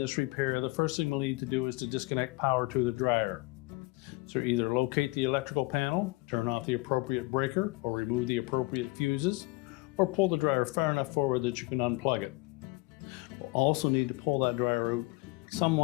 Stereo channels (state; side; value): quieter; right; 23.9 dB